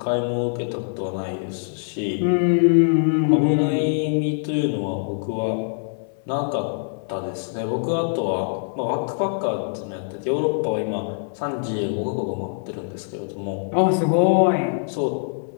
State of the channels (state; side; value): silent; right; 63 dB below the other